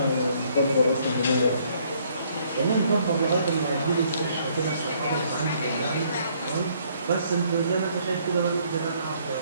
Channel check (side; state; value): both; inverted; correlation -0.65